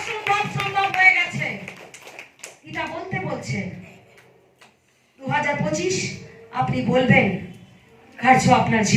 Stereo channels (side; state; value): both; identical; correlation 1.00